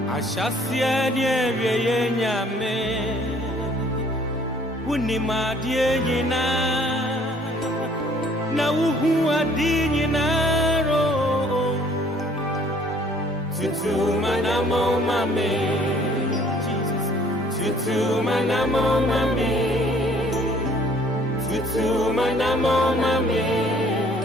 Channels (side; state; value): both; normal; correlation 0.58